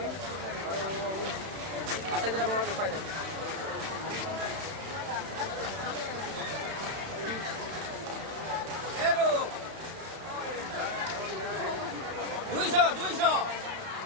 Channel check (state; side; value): late; left; 31 ms